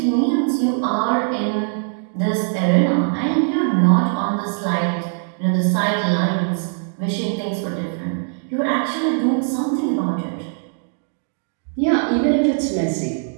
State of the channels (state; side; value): silent; left; digital silence